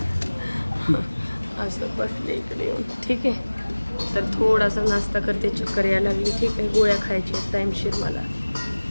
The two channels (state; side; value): inverted; both; correlation -1.00